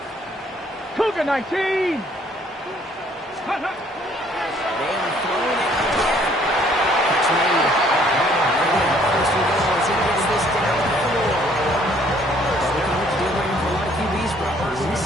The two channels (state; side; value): normal; both; correlation 0.62